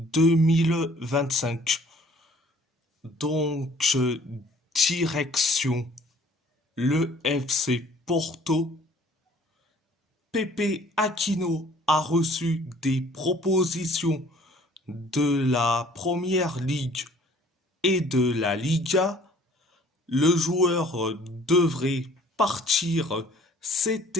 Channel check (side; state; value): both; normal; correlation 0.55